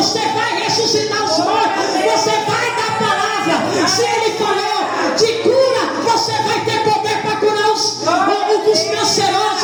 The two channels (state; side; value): identical; both; correlation 1.00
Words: vai ressuscitar os mortos, você vai dar palavra. Se ele falou de cura, você vai ter poder para curar os